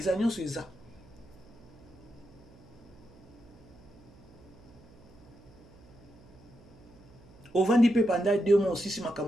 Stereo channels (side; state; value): right; noise; hum, 23 dB below the sound